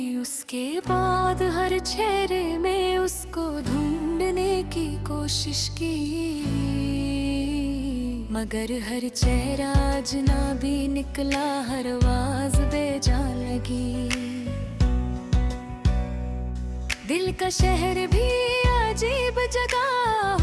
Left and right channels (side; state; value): both; identical; correlation 1.00